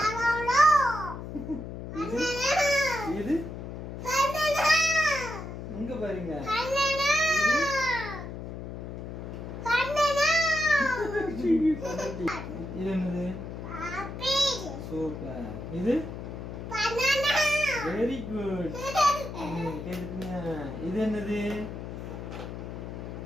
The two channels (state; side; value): noise; left; hum, 8 dB below the sound